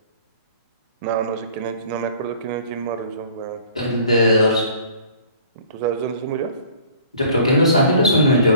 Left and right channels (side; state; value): both; inverted; correlation -0.51